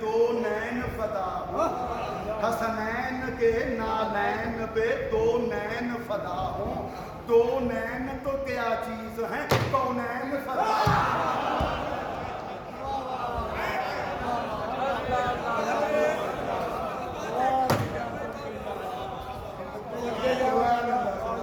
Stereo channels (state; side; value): identical; both; correlation 1.00